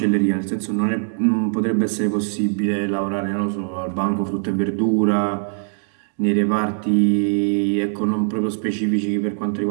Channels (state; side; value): silent; left; digital silence